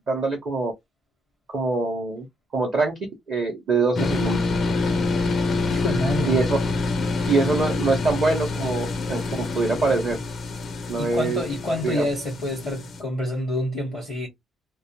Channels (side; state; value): both; normal; correlation 0.74